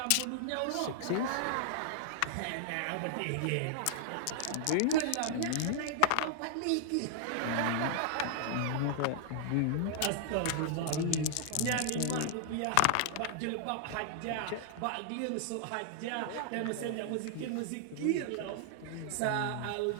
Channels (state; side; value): different; both; correlation -0.01